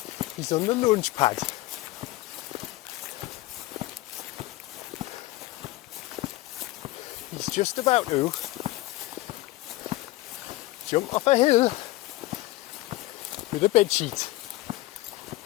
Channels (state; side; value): quieter; right; 19.3 dB